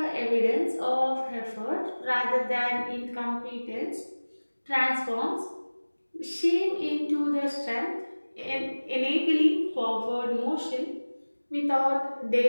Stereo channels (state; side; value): inverted; both; correlation -1.00